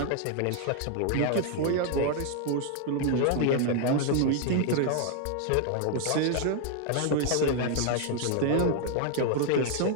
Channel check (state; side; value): different; both; correlation 0.00